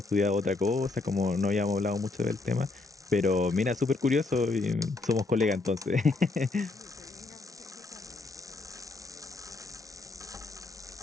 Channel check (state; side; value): quieter; right; 3.6 dB